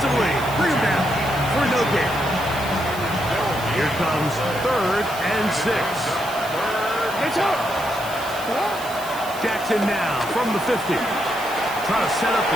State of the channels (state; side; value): noise; right; hiss, 14 dB below the sound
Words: Bring him down for no gain. Here comes 3rd and 6. Jackson now from the 50. Trying to set up